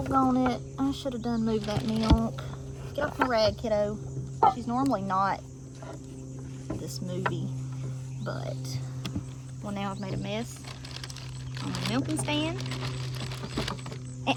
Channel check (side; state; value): both; identical; correlation 1.00